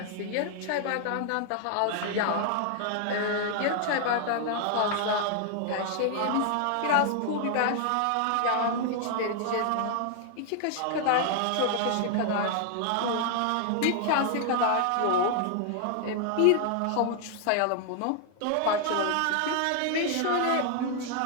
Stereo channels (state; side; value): different; both; correlation 0.00